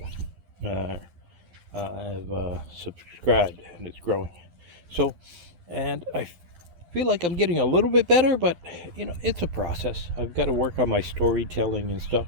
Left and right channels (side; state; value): left; late; 12 ms